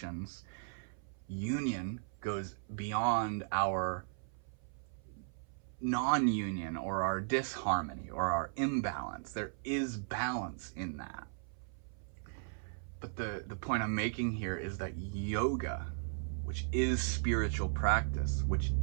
union goes beyond our non-union or our disharmony or our imbalance. There is balance in that. But the point I'm making here is that yoga, which is spiritual practice, which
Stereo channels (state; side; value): silent; left; 53 dB below the other